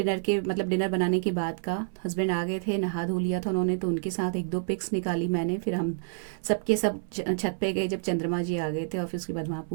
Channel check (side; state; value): left; silent; 56 dB below the other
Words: के, मतलब डिनर बनाने के बाद का। हस्बैंड आ गए थे, नहा धो लिया था उन्होंने, तो उनके साथ 1-2 पिक्स निकाली मैंने। फिर हम सबके सब छत पे गए जब चंद्रमा जी आ गए थे, और फिर उसके बाद वहाँ